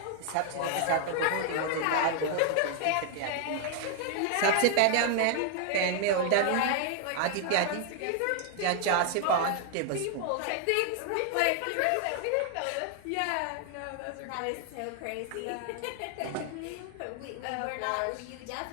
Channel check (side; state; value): both; different; correlation 0.00